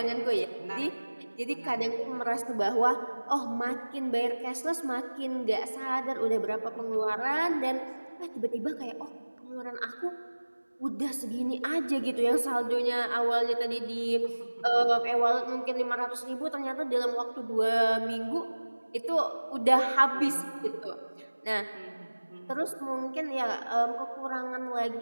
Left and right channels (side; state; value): both; inverted; correlation -1.00